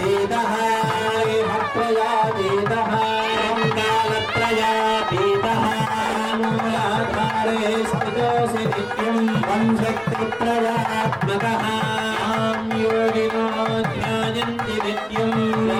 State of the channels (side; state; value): both; identical; correlation 1.00